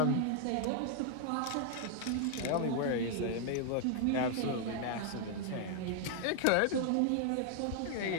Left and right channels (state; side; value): different; both; correlation 0.00